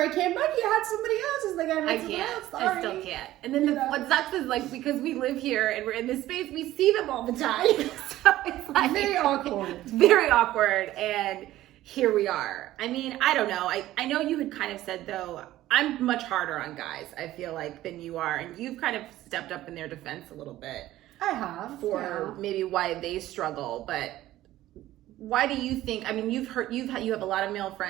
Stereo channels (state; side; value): quieter; left; 14.9 dB